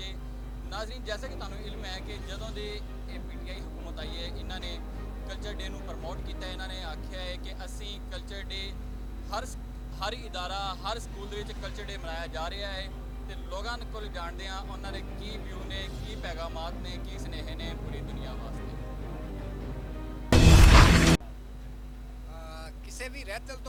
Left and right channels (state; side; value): identical; both; correlation 1.00